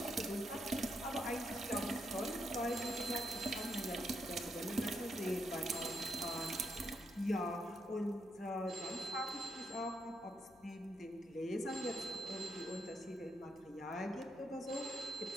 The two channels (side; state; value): left; noise; hum, 27 dB below the sound